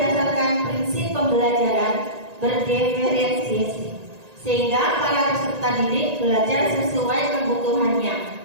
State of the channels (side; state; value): left; late; 1.9 ms